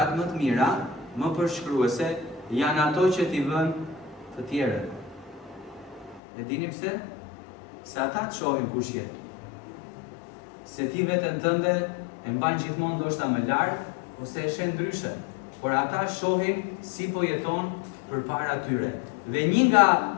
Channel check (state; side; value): drops out; right; at 6.2 s